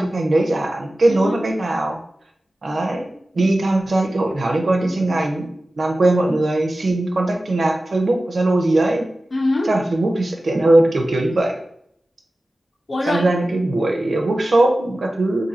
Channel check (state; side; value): normal; both; correlation 0.95